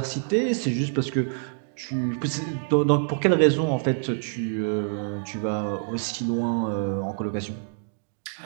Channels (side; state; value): left; silent; digital silence